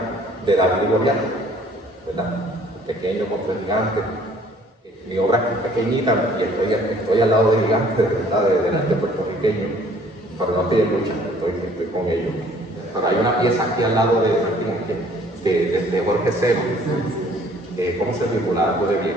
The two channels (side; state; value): both; normal; correlation 0.57